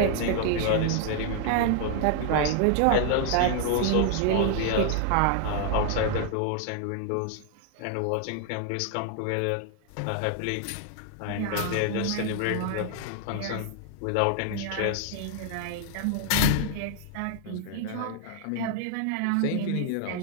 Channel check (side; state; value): both; different; correlation 0.00